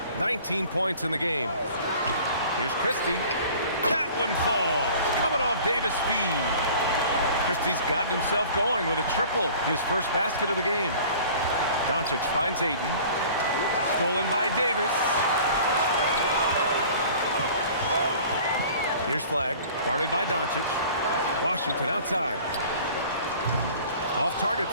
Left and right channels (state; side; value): inverted; both; correlation -0.46